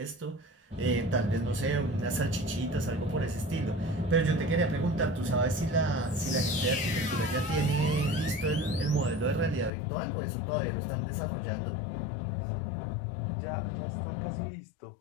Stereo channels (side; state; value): right; drops out; at 9.7 s